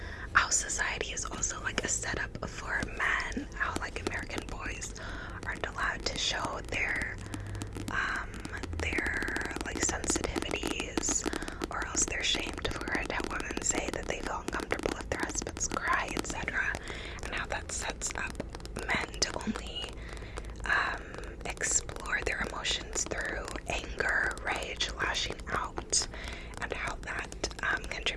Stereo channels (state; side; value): identical; both; correlation 1.00